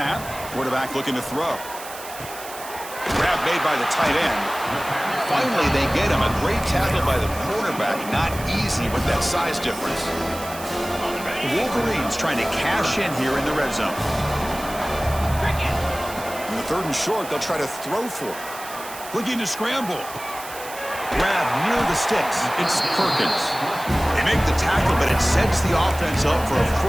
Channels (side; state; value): right; noise; hiss, 13 dB below the sound